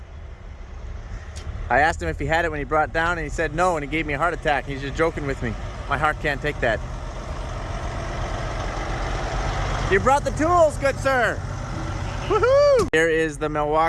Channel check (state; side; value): identical; both; correlation 1.00